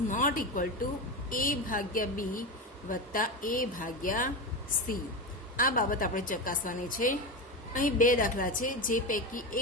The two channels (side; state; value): both; normal; correlation 0.19